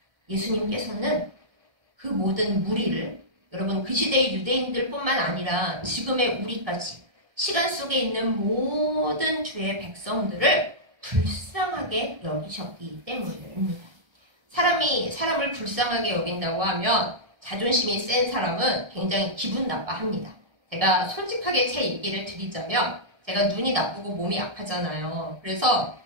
예수님께서는 그 모든 무리를 여러분 그 시대의 유대인들뿐만 아니라 지금의 우리까지 시간 속에 있는 모든 주의 백성들을 불쌍하게 여기셨기 때문입니다. 사람이 사람을 불쌍하게 여긴다고 하면 자존심이 센 사람은 굉장히 기분 나빠합니다. 제가 솔직하게 제 얘기를 드리자면 제가 눈이 나쁘고 몸이 약하잖아요. 그래서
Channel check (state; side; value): late; left; 1.3 ms